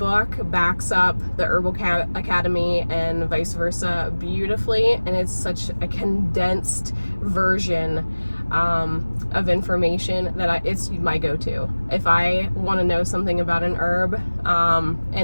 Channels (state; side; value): inverted; both; correlation -1.00